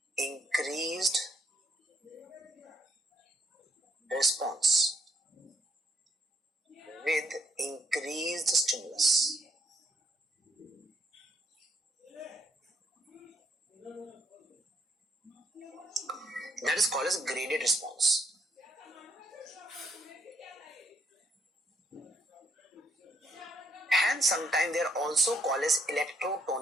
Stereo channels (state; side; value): normal; both; correlation 0.74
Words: increased response with increased stimulus. That is called as graded response. And sometimes they are also called as